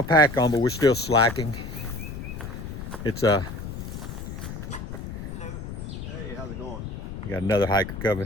pack on, but we're still slacking. It's Hello. Hey, how's it going? got another hiker coming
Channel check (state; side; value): noise; left; rumble, 8 dB below the sound